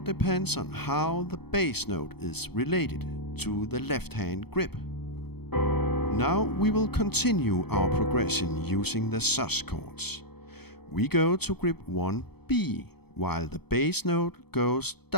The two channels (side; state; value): right; late; 0.97 ms